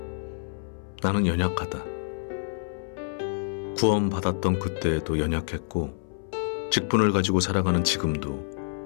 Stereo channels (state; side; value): silent; right; 60 dB below the other